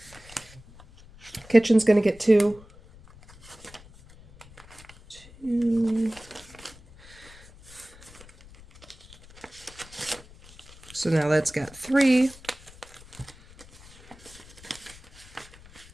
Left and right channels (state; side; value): noise; left; rumble, 22 dB below the sound